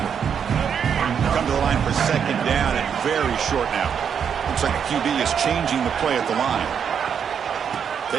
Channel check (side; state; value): left; quieter; 7.5 dB